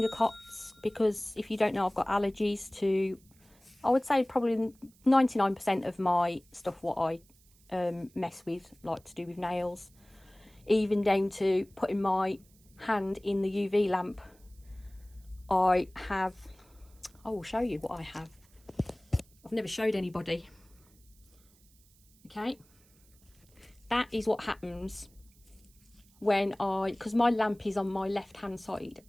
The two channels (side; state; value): right; noise; hiss, 30 dB below the sound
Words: cots, because if you don't know, I've got allergies to, I would say probably 99% of my stuff what I mess with, like to do with nails, even down to putting my hand in the UV lamp. I will show you what I have. I've never showed anybody. Okay, that is what happens when because my lamp is on my left hand side